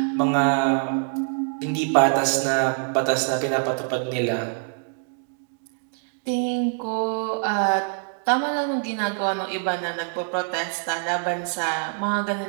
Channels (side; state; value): left; silent; 62 dB below the other